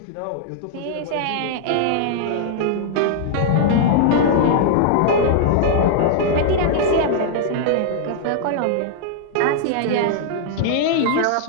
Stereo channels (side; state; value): both; different; correlation -0.01